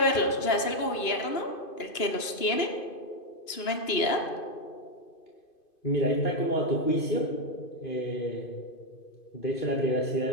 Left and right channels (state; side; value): late; right; 2.5 ms